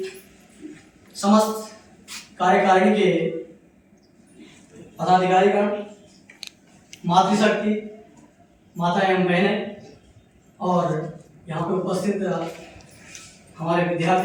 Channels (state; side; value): identical; both; correlation 1.00